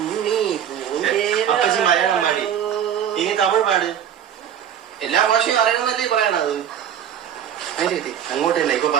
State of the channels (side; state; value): left; quieter; 9.4 dB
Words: അപ്പച്ചി മലയാളം പാടി, ഇനി തമിഴ് പാട്. എല്ലാ ഭാഷയും അറിയണമെന്നല്ലേ പറയണത്. അങ്ങോട്ട് തന്നെ ഇപ്പൊ